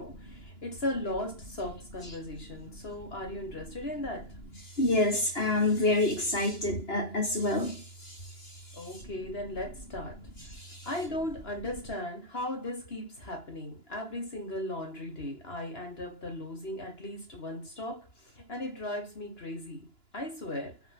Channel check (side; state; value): right; late; 2.9 ms